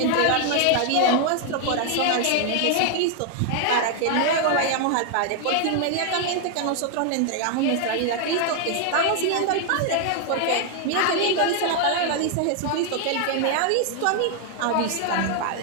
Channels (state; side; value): different; both; correlation 0.00